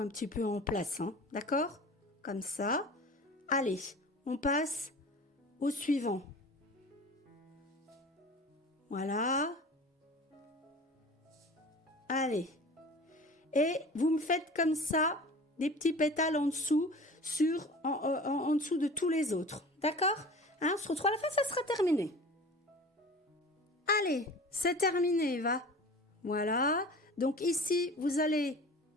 petit peu en place, hein, d'accord? Comme ça. Allez, on passe au suivant. Voilà. Allez. Et vous me faites comme ça des petits pétales en dessous, en dessous de tous les autres, d'accord? Hein, on se retrouve à la fin, ça sera terminé. Allez, c'est terminé, va. Voilà. Donc ici, vous allez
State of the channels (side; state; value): both; normal; correlation 0.39